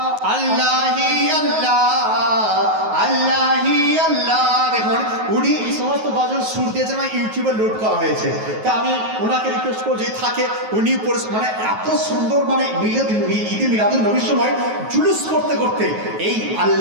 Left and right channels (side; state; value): left; late; 9.3 ms